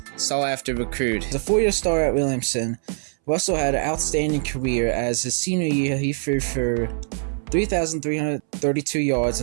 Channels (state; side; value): silent; left; 63 dB below the other